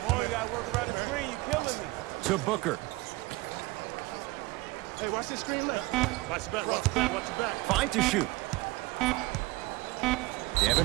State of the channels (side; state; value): left; quieter; 21.4 dB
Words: on, you gotta work around the screen. You killing me. To Booker. Hey, watch the screen left. Watch the back. Fine to shoot.